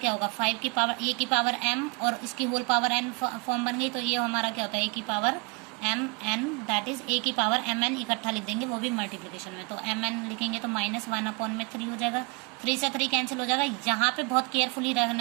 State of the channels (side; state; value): left; quieter; 31.3 dB